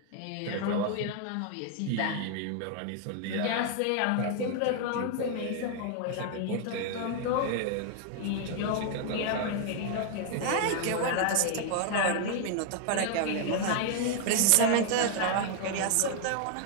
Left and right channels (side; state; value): both; different; correlation 0.00